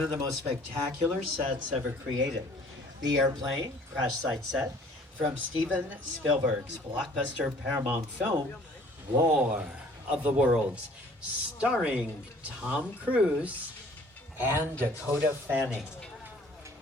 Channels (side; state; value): both; normal; correlation 0.54